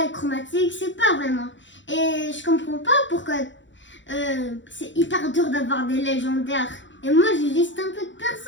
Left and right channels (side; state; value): right; late; 0.54 ms